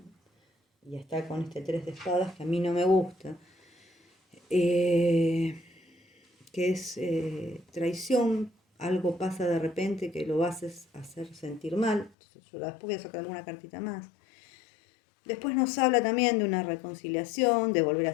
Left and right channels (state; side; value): drops out; right; at 12.1 s